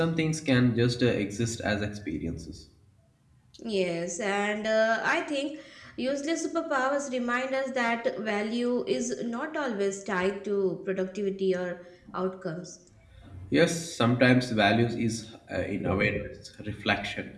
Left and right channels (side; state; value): both; identical; correlation 1.00